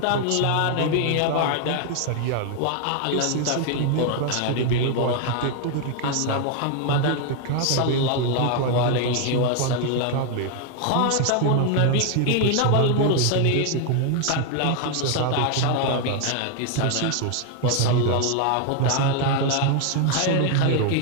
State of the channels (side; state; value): both; different; correlation 0.01